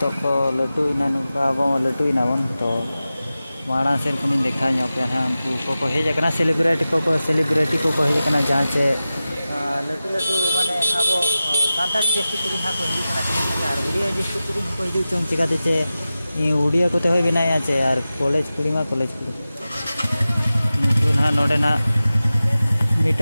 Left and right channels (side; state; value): both; inverted; correlation -0.95